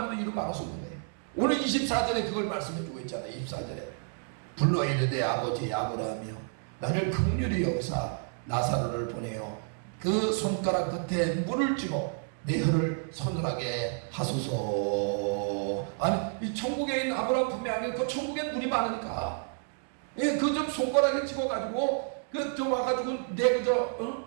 해도 이루 막을 수 없는 거예요. 오늘 24절에 그걸 말씀해주고 있잖아요. 24절에 불러 이르되 아버지 아브라함이여 나를 긍휼히 여기사 나사로를 보내어 그 손가락 끝에 물을 쥐고 내 혀를 서늘하게 하소서. 아니 이 천국에 있는 아브라함 품에 안에 그 천국엔 물이 많으니까 그 좀 손가락에 찍어가지고 그 좀 와가지고 내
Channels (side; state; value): left; silent; 58 dB below the other